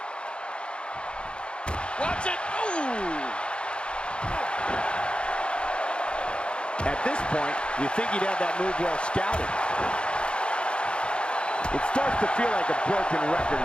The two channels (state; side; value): late; right; 0.055 ms